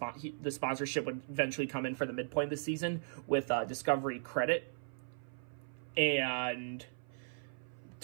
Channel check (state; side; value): silent; left; 53 dB below the other